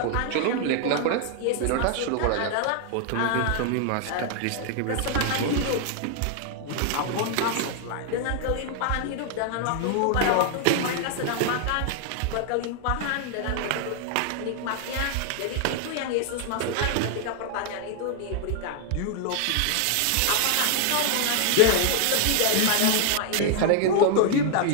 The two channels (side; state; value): both; different; correlation 0.00